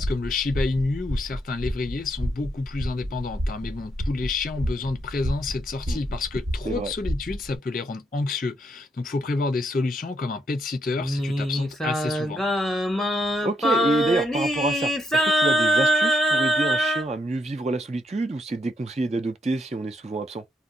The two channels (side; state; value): both; normal; correlation 0.77